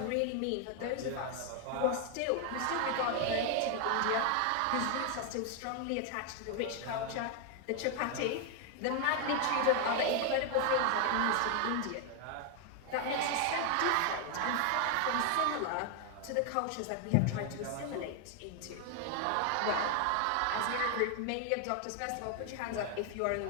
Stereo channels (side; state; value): both; different; correlation 0.00